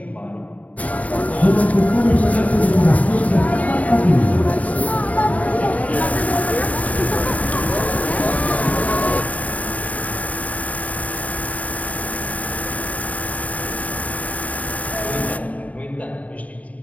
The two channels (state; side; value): late; right; 0.070 ms